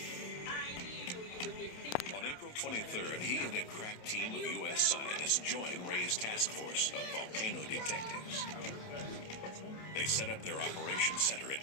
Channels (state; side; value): late; right; 27 ms